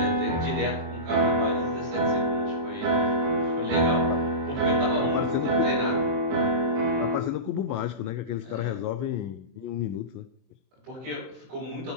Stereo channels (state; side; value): late; left; 23 ms